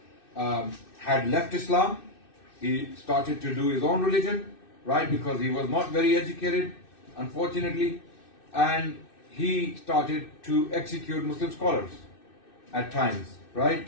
had left Islam he started to do his own religion, right? Because he was not very educated, unfortunately, and he started to execute Muslim scholars at times, right?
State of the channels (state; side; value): late; right; 2.6 ms